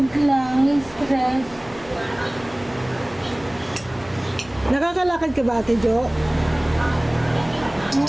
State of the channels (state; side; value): noise; left; hum, 22 dB below the sound